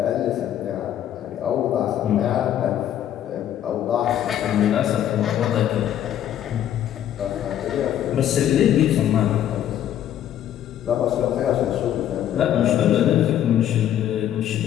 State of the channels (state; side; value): quieter; right; 11.0 dB